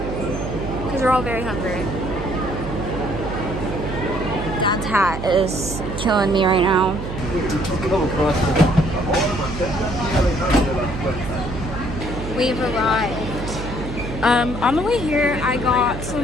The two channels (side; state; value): right; noise; hum, 7 dB below the sound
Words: because we're all very hungry. Dad's hat is killing me right now. We've arrived. On the way here, I got